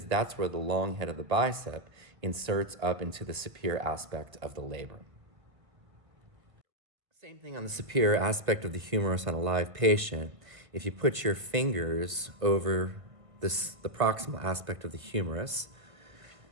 that's where the long head of the bicep inserts up into the superior aspect of the labrum. Same thing on the superior aspect of the humerus on a live patient. If you put your fingers over the proximal aspect of the humerus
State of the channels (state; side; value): late; left; 1.5 ms